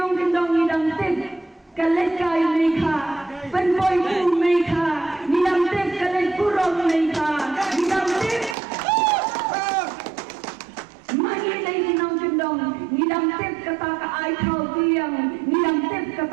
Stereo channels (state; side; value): drops out; left; at 8.6 s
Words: kendong idang tip. Kalekay mereka, penboy pu mereka, nidang tip kalek purong mereka, nidang tip. Mangilay kinong kendong, nidang tip kata ka ay kau tiang, nidang tip